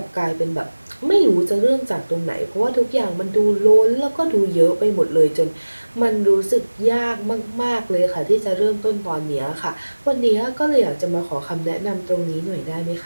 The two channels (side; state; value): both; inverted; correlation -1.00